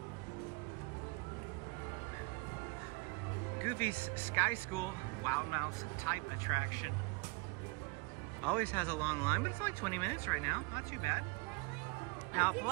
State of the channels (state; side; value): quieter; left; 27.9 dB